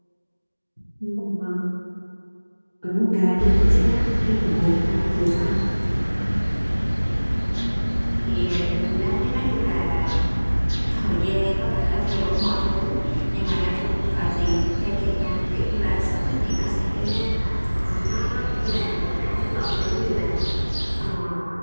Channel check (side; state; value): both; inverted; correlation -1.00